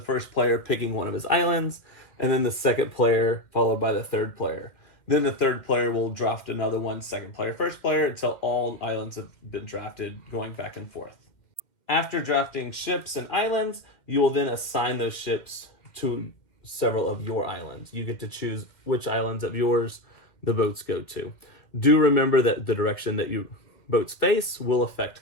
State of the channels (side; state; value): right; late; 2.1 ms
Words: player picking one of his islands, and then the second player followed by the third player. Then the third player will draft another one, second player, first player, until all islands have been drafted, going back and forth. After drafting ships and islands, you will then assign those ships to several of your islands. You get to choose which islands of yours the boats go to. Do remember that the direction that your boats face will